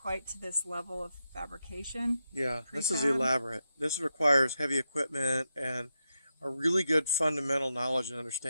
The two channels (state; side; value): inverted; both; correlation -0.86